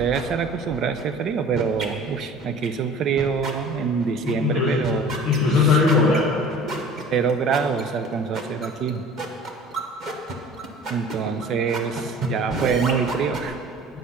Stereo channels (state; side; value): normal; both; correlation 0.45